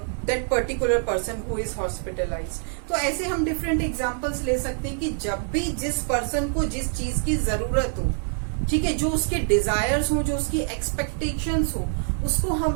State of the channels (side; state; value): left; silent; 58 dB below the other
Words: particular person who is hospitalized। तो ऐसे हम डिफरेंट एग्जांपल्स ले सकते हैं कि जब भी जिस पर्सन को जिस चीज की जरूरत हो, ठीक है, जो उसके डिजायर्स हो, जो उसकी एक्सपेक्टेशंस हो, उसको